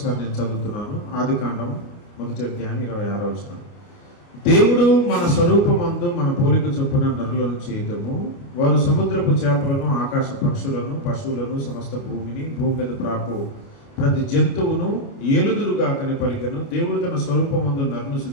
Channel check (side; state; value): right; late; 29 ms